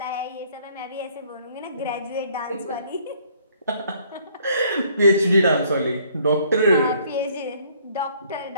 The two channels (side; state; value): both; inverted; correlation -0.62